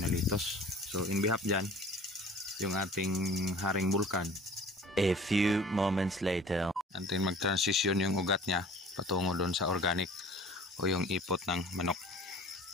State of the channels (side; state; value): both; normal; correlation 0.46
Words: litos. So in behalf dyan, yung ating haring bulkan. A few moments later. Antin mag-transition yung ugat niya patungo doon sa organic o yung ipot ng manok.